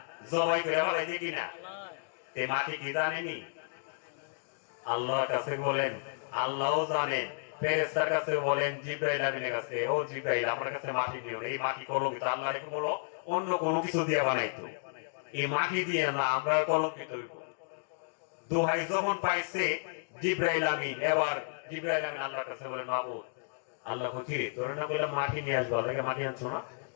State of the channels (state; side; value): silent; right; digital silence